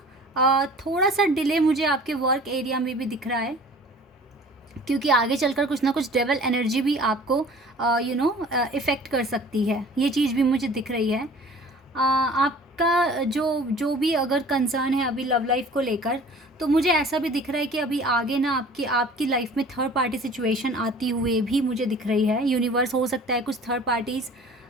थोड़ा सा डिले मुझे आपके वर्क एरिया में भी दिख रहा है, क्योंकि आगे चलकर कुछ ना कुछ डेवल एनर्जी भी आपको इफ़ेक्ट कर सकती है। ये चीज़ भी मुझे दिख रही है। आपका जो भी अगर कंसर्न है अभी लव लाइफ को लेकर, तो मुझे ऐसा भी दिख रहा है कि अभी आगे ना आपकी लाइफ में थर्ड पार्टी सिचुएशन आती हुए भी मुझे दिख रही है। यूनिवर्स हो सकता है कुछ थर्ड पार्टीज़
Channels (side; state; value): both; normal; correlation 0.46